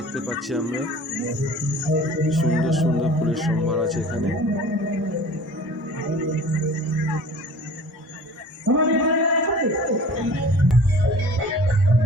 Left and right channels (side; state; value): both; normal; correlation 0.45